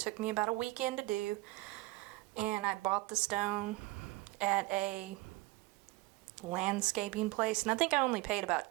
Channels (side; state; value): left; quieter; 20.7 dB